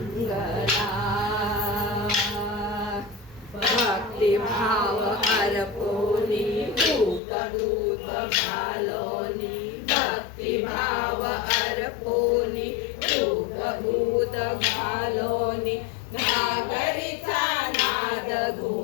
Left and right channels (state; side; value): drops out; right; at 7.2 s